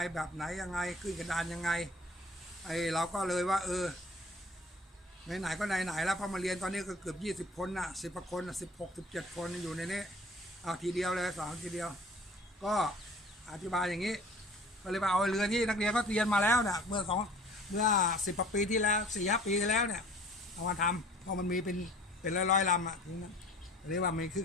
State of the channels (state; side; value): normal; both; correlation 0.49